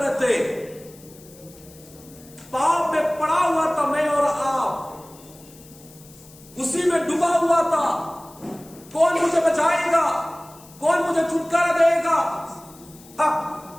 थे, पाप में पड़ा हुआ था मैं और आप, उसी में डूबा हुआ था। कौन मुझे बचाएगा? कौन मुझे छुटकारा देगा?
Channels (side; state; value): left; noise; hiss, 23 dB below the sound